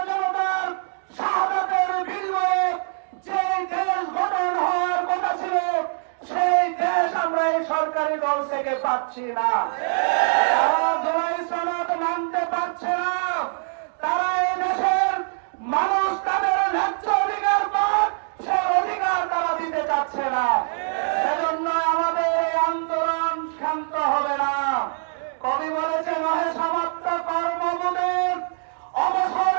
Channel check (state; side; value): silent; left; digital silence